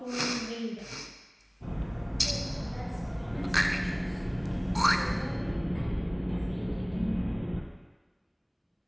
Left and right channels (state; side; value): identical; both; correlation 1.00